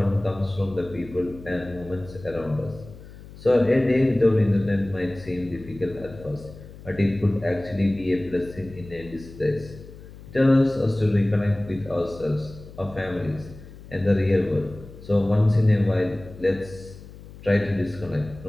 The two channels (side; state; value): left; noise; hum, 17 dB below the sound